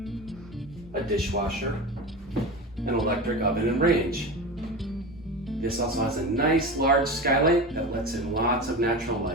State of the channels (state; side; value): normal; both; correlation 0.27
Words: a dishwasher, an electric oven and range. This also has a nice large skylight that lets in lots of natural